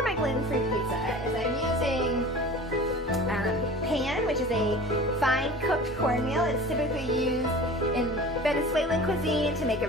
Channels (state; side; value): normal; both; correlation 0.39